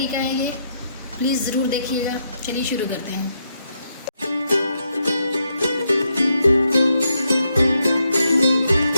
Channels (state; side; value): inverted; both; correlation -0.79